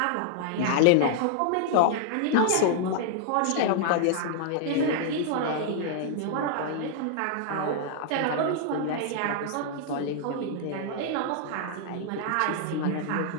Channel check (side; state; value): both; different; correlation -0.01